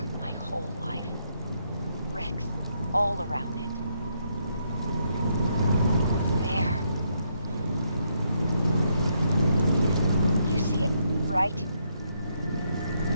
my whole life. Wrecks all around it. There. You see it, right?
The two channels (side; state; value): both; inverted; correlation -0.76